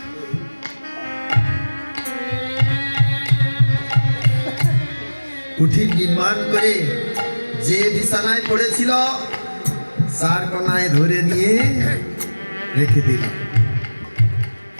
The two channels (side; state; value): both; inverted; correlation -1.00